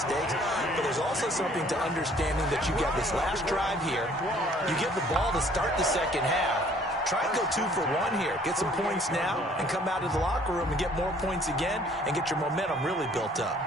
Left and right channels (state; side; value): normal; both; correlation 0.58